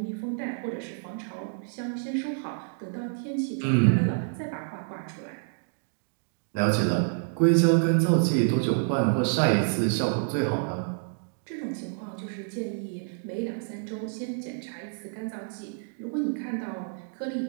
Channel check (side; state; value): left; silent; digital silence